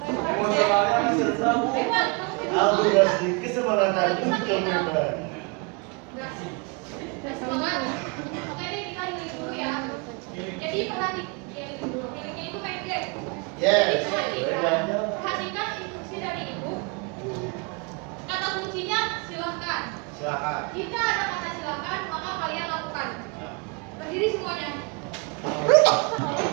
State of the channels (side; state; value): left; quieter; 30.4 dB